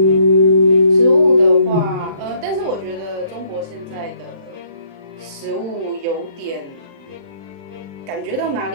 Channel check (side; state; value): left; late; 36 ms